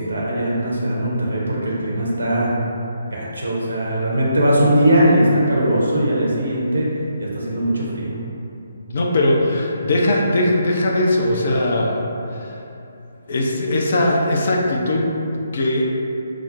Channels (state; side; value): inverted; both; correlation -0.76